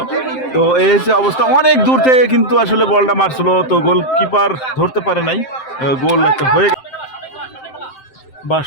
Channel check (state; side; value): late; right; 7.7 ms